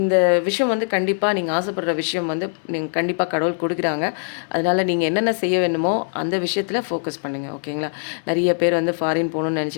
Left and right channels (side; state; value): right; silent; digital silence